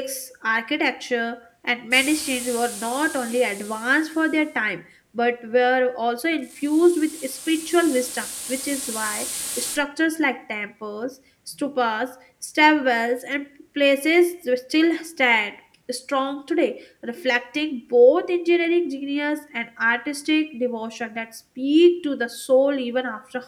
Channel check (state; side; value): identical; both; correlation 1.00